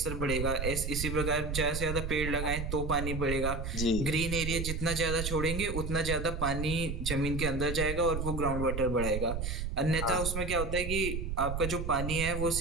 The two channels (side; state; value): right; noise; rumble, 4 dB below the sound